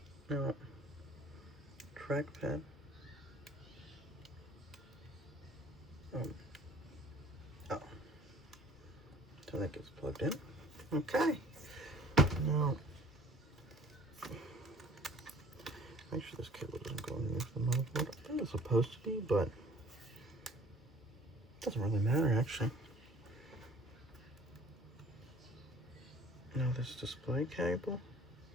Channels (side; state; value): both; normal; correlation 0.51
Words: Now, trackpad. Oh. So that gets plugged in. Okay. Now, make sure this cable doesn't go underneath the motherboard. I think it's supposed to be, but it doesn't really matter actually. Now this display cable.